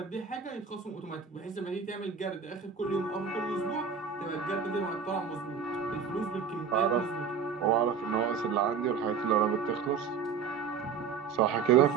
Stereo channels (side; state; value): left; quieter; 6.3 dB